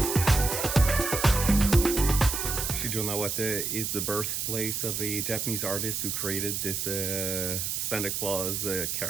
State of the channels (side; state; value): right; noise; hiss, 2 dB below the sound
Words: Shijonawate is the birthplace of a Japanese artist who created this Santa Claus